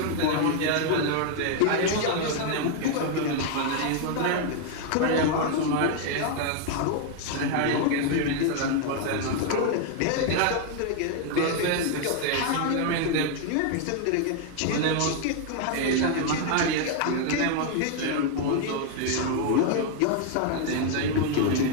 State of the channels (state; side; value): different; both; correlation 0.00